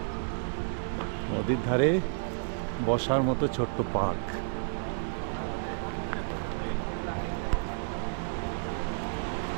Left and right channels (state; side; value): silent; left; digital silence